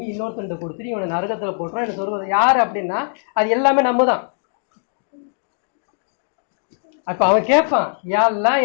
இன்னொருத்தன்ட்ட கொடுத்துட்டு இவனை நரகத்தில் போட்டுறான். என்ன சொல்வது யார் அப்படின்னா, அது எல்லாமே நம்ம தான். அப்போ அவன் கேட்பான், யாரெல்லாம்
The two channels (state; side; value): silent; right; digital silence